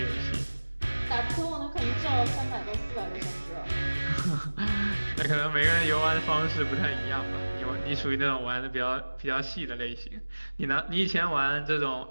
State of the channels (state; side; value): inverted; both; correlation -1.00